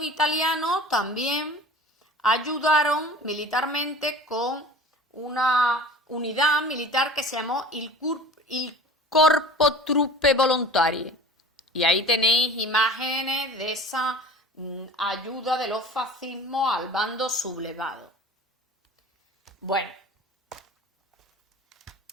italianos también ayudaron militarmente con una unidad militar que se llamó il Corpo Truppe Volontarie. Y ahí tenéis imágenes de esa ayuda de los fascismos al bando sublevado. Bueno,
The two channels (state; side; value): normal; both; correlation 0.41